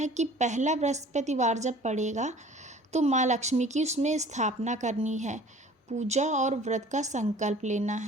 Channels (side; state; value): both; normal; correlation 0.48